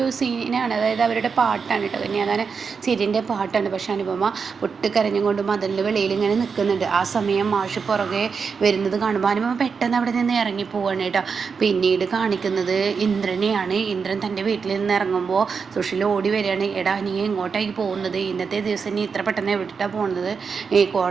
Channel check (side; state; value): left; quieter; 5.6 dB